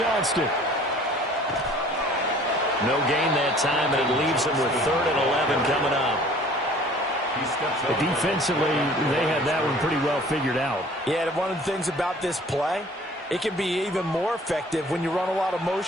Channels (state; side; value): normal; both; correlation 0.51